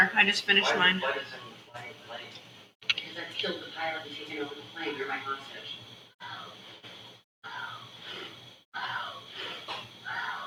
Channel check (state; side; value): identical; both; correlation 1.00